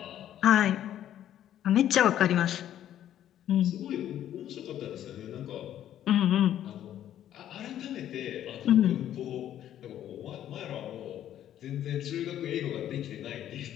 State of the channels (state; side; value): quieter; right; 11.3 dB